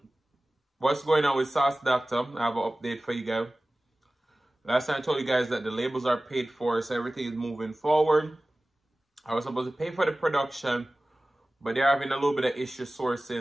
what's going on with Sauce Dackta. I have an update for you guys. Last time I told you guys that the labels are paid for, so everything is moving forward. I was supposed to pay for the production, but they're having a little bit of issue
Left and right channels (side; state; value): both; normal; correlation 0.97